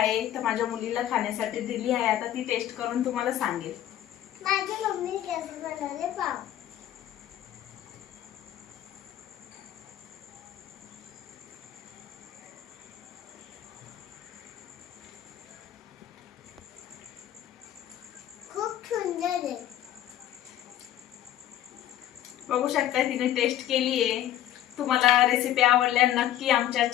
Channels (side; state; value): right; quieter; 12.2 dB